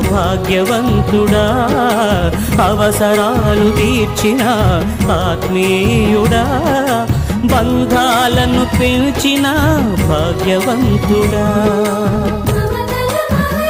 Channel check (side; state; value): both; identical; correlation 1.00